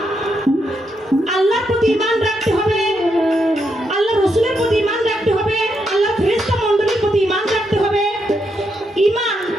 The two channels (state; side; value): normal; both; correlation 0.80